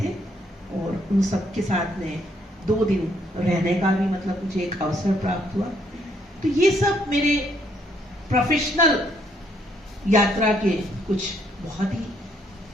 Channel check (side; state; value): both; normal; correlation 0.70